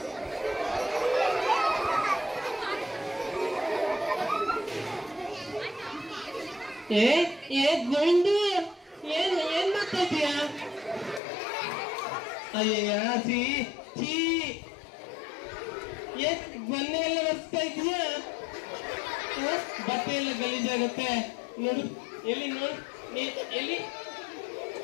ಗೋವಿಂದು, ಏನ್ ಮಾಡ್ತಾ ಇದೀಯಾ? ಅಯ್ಯ ಮೊನ್ನೆ ಎಲ್ಲ ಬರ್ತಾ ಇದೀಯಾ? ಬಟ್ಟೆ ಎಲ್ಲ ಗಲೀಜಾಗುತ್ತೆ ನೋಡು. ಎಲ್ಲಿ ನೋಡು, ಎಲ್ಲಿ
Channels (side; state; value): right; drops out; at 11.2 s